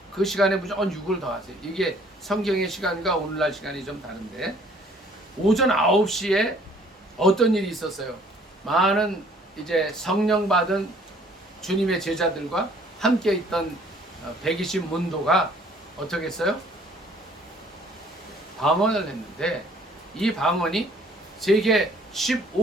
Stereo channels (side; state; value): both; normal; correlation 0.58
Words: 그 시간에 무조건 6을 더하세요. 이게 성경의 시간과 오늘날 시간이 좀 다른데, 오전 9시에 어떤 일이 있었어요? 많은 이제 성령 받은 주님의 제자들과 함께 있던 120문도가 어떻게 했어요? 방언을 했는데 이 방언이 세계